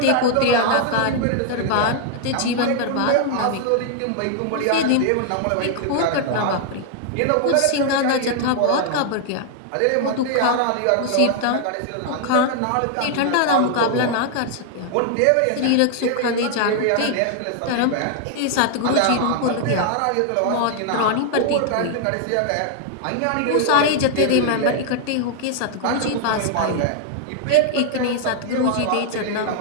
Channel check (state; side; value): different; both; correlation 0.00